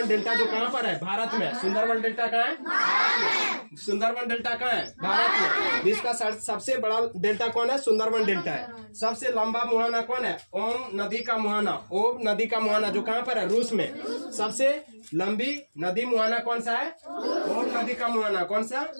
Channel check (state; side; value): inverted; both; correlation -1.00